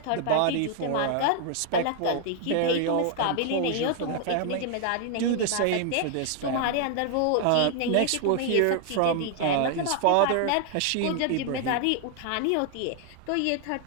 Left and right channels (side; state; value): both; different; correlation 0.00